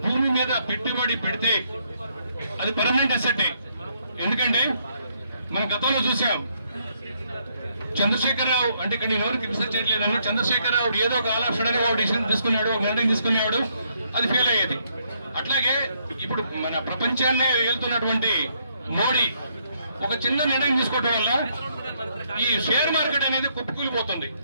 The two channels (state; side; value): inverted; both; correlation -0.72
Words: భూమి మీద పెట్టుబడి పెడితే అది పర్మనెంట్ అసెట్టే. ఎందుకంటే మనం గతంలో చూసాం, చంద్రశేఖరరావు అంటే ఇక్కడ నేను ఎవరికి రీసెర్చ్ చేయట్లేదన్నా, చంద్రశేఖరరావు ఏదో ఒక ఆలోచనని ఒక డిసిషన్ తీసుకున్నాడు, ఒక నిర్ణయం తీసుకునేవాడు, అది ఫెయిల్ అయ్యేది. అట్లాగే ఇప్పుడు మన ప్రపంచాన్నే వెళ్తున్నటువంటి మోడీ ఒక చిన్న నిర్ణయం తీసుకోవడం వల్ల ఈ షేర్ మార్కెట్ అనేది కుప్పకూలిపోతుంది,